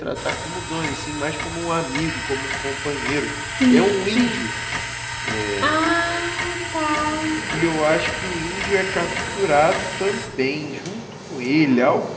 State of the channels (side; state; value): both; identical; correlation 1.00